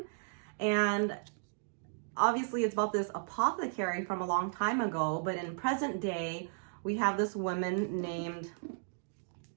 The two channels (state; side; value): silent; left; digital silence